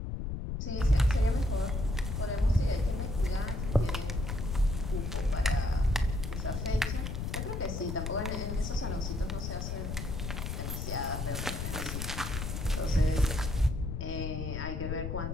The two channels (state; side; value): noise; left; rumble, 3 dB below the sound